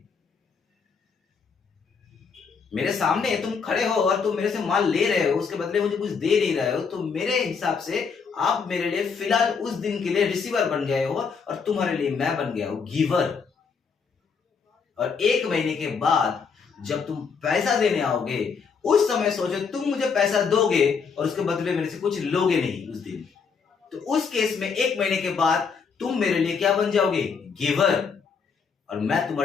मेरे सामने तुम खड़े हो और तुम मेरे से माल ले रहे हो, उसके बदले मुझे कुछ दे नहीं रहे हो, तो मेरे हिसाब से आप मेरे लिए फिलहाल उस दिन के लिए रिसीवर बन गए हो, और तुम्हारे लिए मैं बन गया हूं गिवर। और 1 महीने के बाद जब तुम पैसा देने आओगे, उस समय सोचो तुम मुझे पैसा दोगे और उसके बदले मेरे से कुछ लोगे नहीं उस दिन। तो उस केस में 1 महीने के बाद तुम मेरे लिए क्या बन जाओगे? गिवर, और मैं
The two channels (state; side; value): quieter; right; 5.7 dB